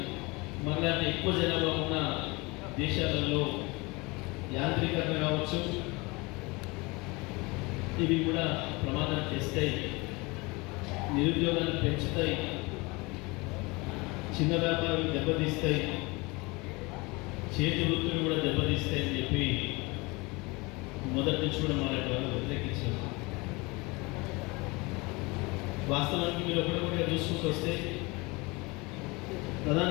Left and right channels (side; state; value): right; quieter; 25.5 dB